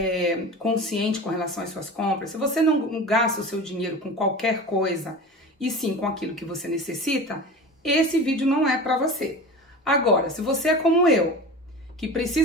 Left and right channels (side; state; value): both; normal; correlation 0.33